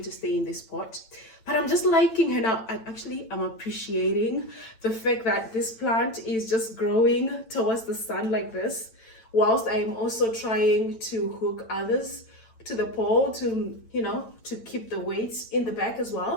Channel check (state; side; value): late; right; 8.9 ms